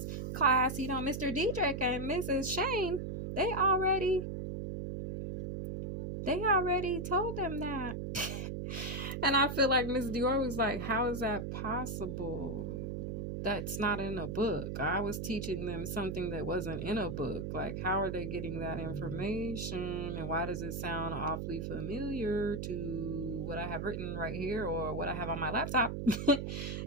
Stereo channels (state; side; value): noise; right; hum, 4 dB below the sound